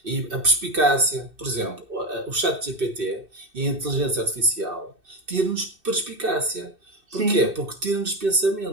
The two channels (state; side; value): late; left; 2.6 ms